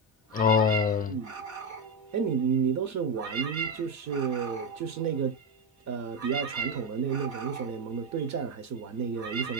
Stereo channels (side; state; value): both; normal; correlation 0.10